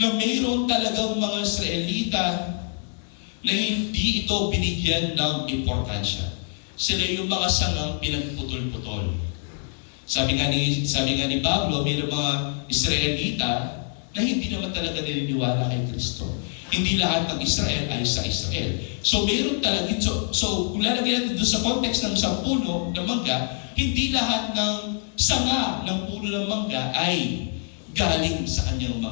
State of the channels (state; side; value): silent; right; 62 dB below the other